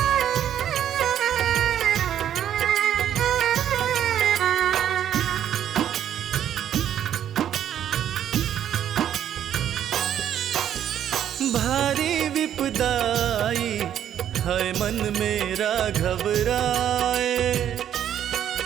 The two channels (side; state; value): left; quieter; 10.2 dB